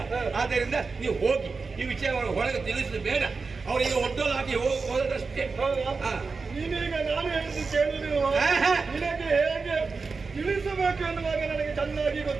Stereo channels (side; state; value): left; quieter; 4.5 dB